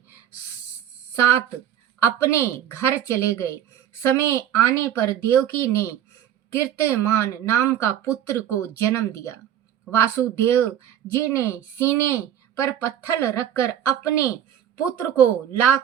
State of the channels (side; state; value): left; quieter; 10.5 dB